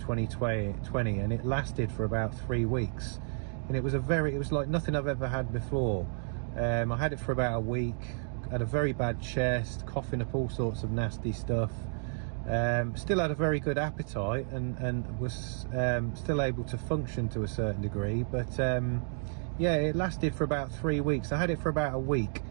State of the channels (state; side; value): silent; left; 57 dB below the other